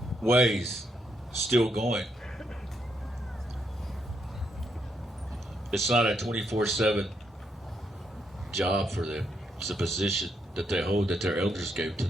ways still going. It's not a 24/7 job for them. It's a position that they hold, that their elders gave to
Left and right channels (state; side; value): normal; both; correlation 0.78